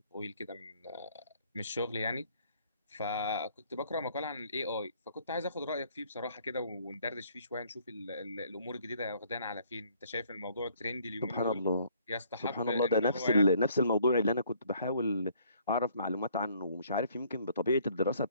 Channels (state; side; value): inverted; both; correlation -0.62